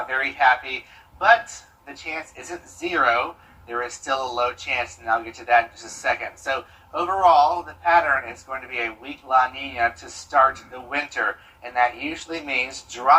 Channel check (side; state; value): both; identical; correlation 1.00